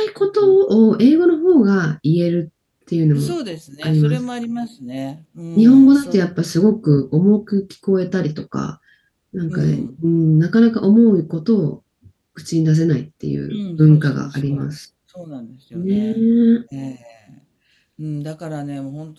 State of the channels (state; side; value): identical; both; correlation 1.00